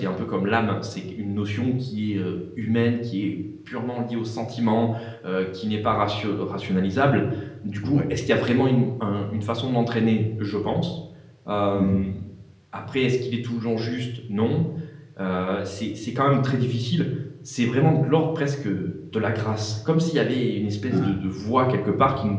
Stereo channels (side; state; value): both; identical; correlation 1.00